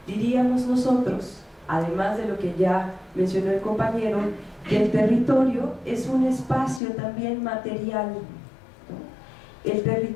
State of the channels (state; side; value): drops out; right; at 6.8 s